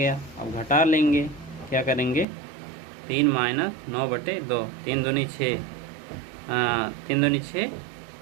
अब घटा लेंगे, क्या करेंगे, 3 माइनस 9/2, 3 दूनी 6, 3 दूनी 6,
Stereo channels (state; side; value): drops out; left; at 2.2 s